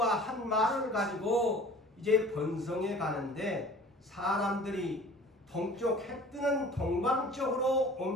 한 말을 가지고 이제 번성해 가는데 사람들이 동쪽 해 뜨는 동방 쪽으로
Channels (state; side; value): normal; both; correlation 0.46